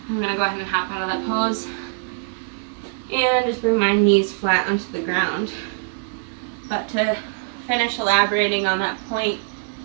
I'm going to go ahead and hop out of that pose and just bring my knees flat onto the ground. But to finish elaborating on that point,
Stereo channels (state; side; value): silent; left; digital silence